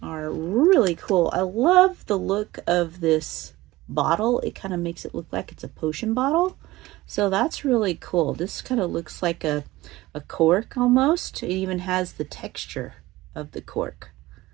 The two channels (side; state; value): left; quieter; 18.5 dB